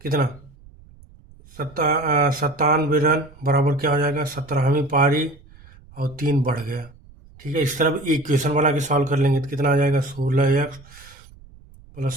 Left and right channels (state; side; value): noise; right; rumble, 24 dB below the sound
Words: कितना 97 रन बराबर क्या हो जाएगा 17वीं पारी, और 3 बढ़ गया। ठीक है, इस तरह इक्वेशन बना के सॉल्व कर लेंगे तो कितना आ जाएगा 16x प्लस